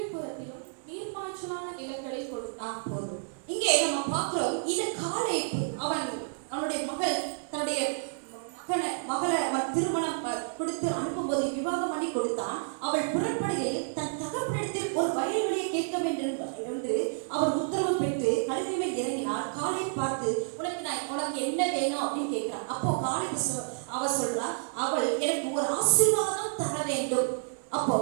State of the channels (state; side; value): silent; left; 58 dB below the other